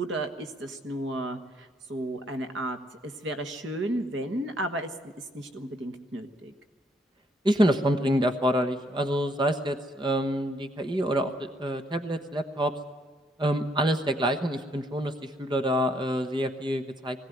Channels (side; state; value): both; normal; correlation 0.70